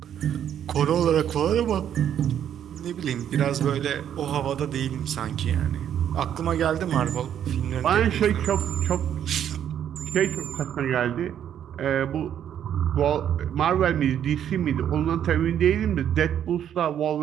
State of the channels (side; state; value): left; quieter; 9.7 dB